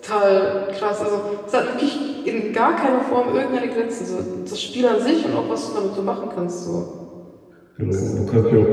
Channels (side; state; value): both; identical; correlation 1.00